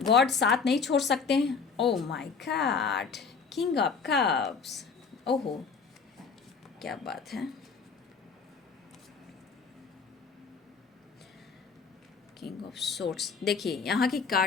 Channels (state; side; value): quieter; right; 5.3 dB